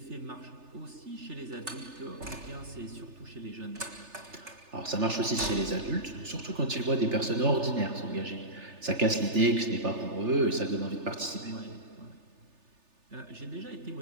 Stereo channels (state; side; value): late; left; 3.4 ms